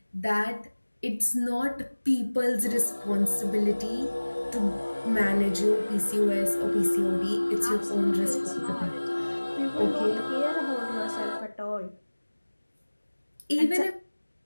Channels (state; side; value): inverted; both; correlation -1.00